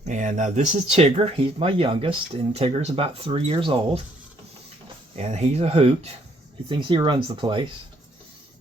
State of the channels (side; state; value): both; normal; correlation 0.67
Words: And this is Tigger. He's my youngest, and Tigger's about 3 years old. And he's a hoot. He thinks he runs the place.